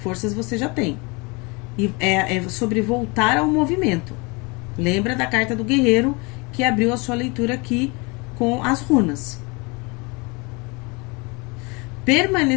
você já tem. E é sobre voltar ao movimento. Lembra da carta do guerreiro que abriu a sua leitura aqui com as runas.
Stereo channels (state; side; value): quieter; right; 28.4 dB